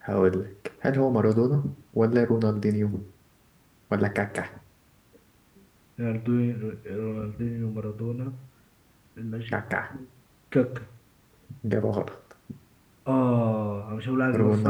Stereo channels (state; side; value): identical; both; correlation 1.00